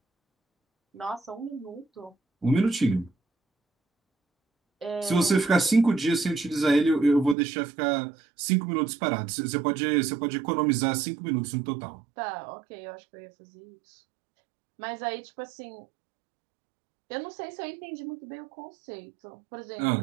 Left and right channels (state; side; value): drops out; left; at 7.4 s